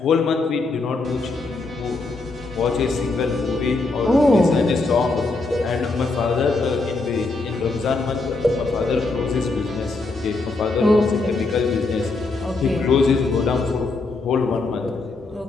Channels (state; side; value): quieter; right; 3.5 dB